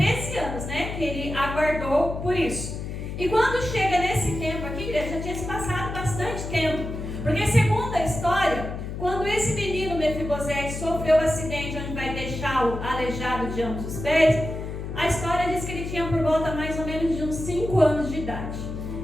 anos, né, que ele aguardou por isso. E quando chega nesse tempo aqui, igreja, já tinha se passado bastante tempo, porque segundo a história, quando esse menino Mefibosete sofreu o acidente onde vai deixá-lo aleijado de ambos os pés, a história diz que ele tinha por volta mais ou menos de uns 5 anos de idade.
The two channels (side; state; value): left; noise; hum, 6 dB below the sound